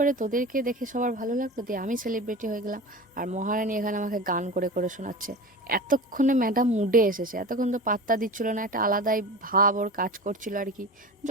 তোদেরকে দেখে সবার ভালো লাগলো, দিয়ে আমি সেলিব্রিটি হয়ে গেলাম। আর মহারানী এখানে আমাকে গান করে করে শোনাচ্ছে। এতক্ষণে ম্যাডাম মুডে এসেছে, এতক্ষণ তো পাত্তা দিচ্ছিল না, একটা আলাদাই ভাব ওর কাজ করছিল আর কি।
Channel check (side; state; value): both; normal; correlation 0.32